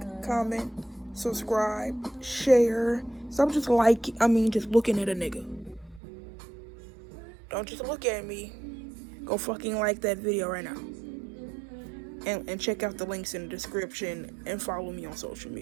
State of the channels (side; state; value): left; drops out; at 6.0 s